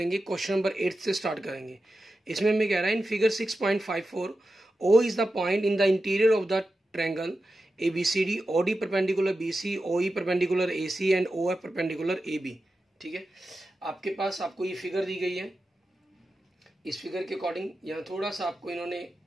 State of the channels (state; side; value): normal; both; correlation 0.91